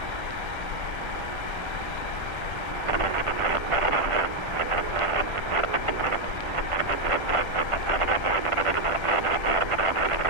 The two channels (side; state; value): left; late; 1.3 ms